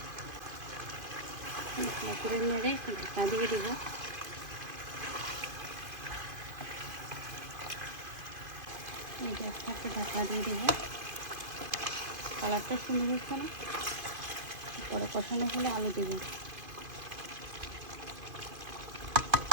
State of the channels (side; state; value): left; late; 2.5 ms